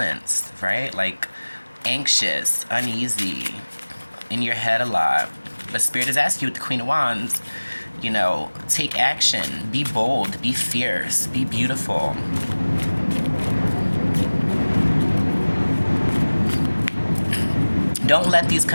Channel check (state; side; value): inverted; both; correlation -1.00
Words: right? Like anxious, uneasy, in your head a lot. But Spirit is asking you with the Queen of Wands, you know, take action, be bold, be fierce, be beautiful. Don't let these